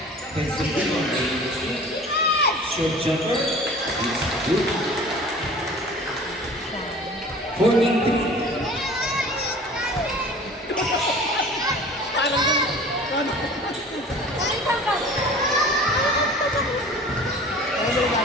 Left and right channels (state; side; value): normal; both; correlation 0.44